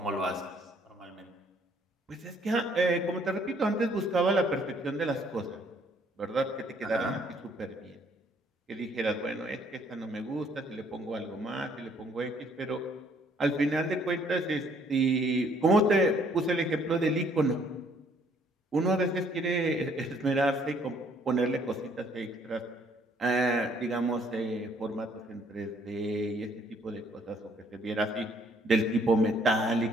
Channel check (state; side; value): normal; both; correlation 0.64